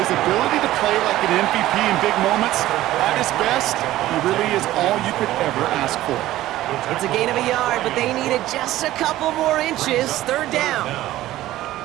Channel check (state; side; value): quieter; left; 15.1 dB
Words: ability to play like an MVP in big moments, at his best, he really is all you could ever ask for. It's a gain of a yard, but they needed just a couple more inches. Third down.